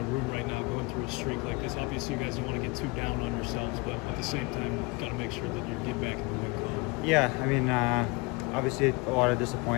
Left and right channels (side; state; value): right; quieter; 27.1 dB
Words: room right now going through a streak like this? Obviously, you guys don't want to get too down on yourselves, but at the same time, got to make sure that you get back in the win column. Yeah, I mean, obviously a lot of